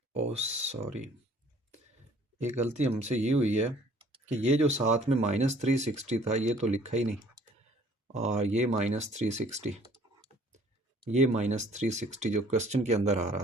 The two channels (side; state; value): both; normal; correlation 0.56